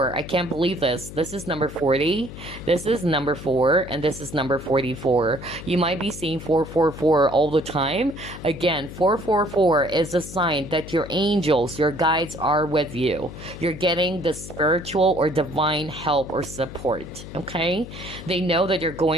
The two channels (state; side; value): noise; left; hum, 13 dB below the sound